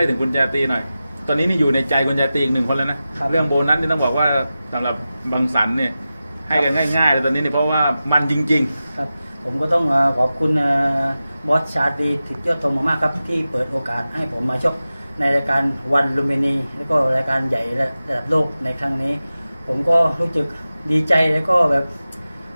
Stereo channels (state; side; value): inverted; both; correlation -0.94